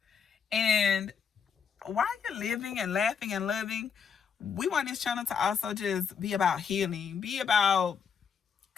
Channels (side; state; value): right; quieter; 6.8 dB